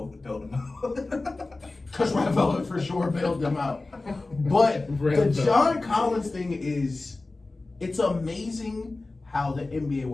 bailed him out. Because Red Velvet for sure bailed them out. But the John Collins thing is, it's amazing how the NBA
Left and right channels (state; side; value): quieter; right; 3.3 dB